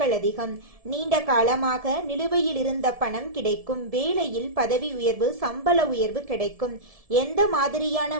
அதிகம். நீண்ட காலமாக நிலுவையில் இருந்த பணம் கிடைக்கும். வேலையில் பதவி உயர்வு, சம்பள உயர்வு கிடைக்கும். எந்த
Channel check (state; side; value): late; left; 1.7 ms